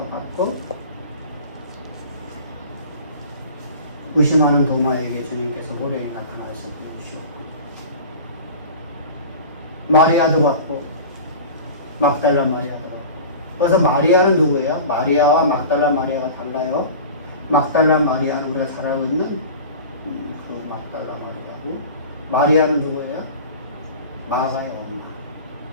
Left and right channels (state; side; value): inverted; both; correlation -0.37